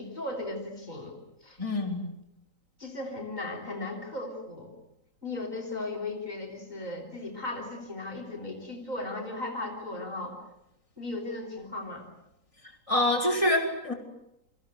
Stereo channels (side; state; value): left; late; 3.9 ms